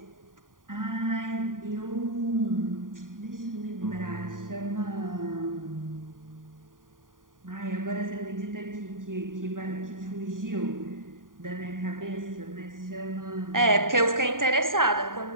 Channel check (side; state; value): left; late; 0.89 ms